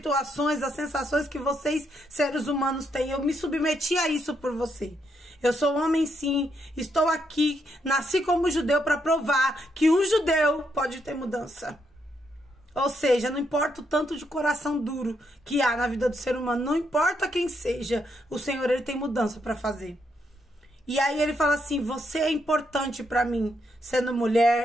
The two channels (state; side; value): normal; both; correlation 0.77